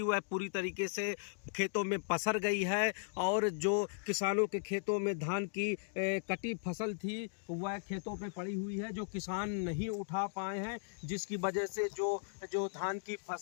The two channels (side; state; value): right; silent; digital silence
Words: वह पूरी तरीके से खेतों में पसर गई है। और जो किसानों के खेतों में धान की कटी फसल थी वह खेतों पे पड़ी हुई है, जो किसान नहीं उठा पाए हैं, जिसकी वजह से जो धान की